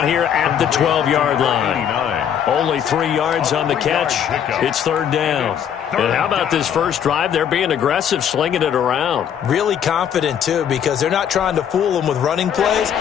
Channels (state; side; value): quieter; right; 8.8 dB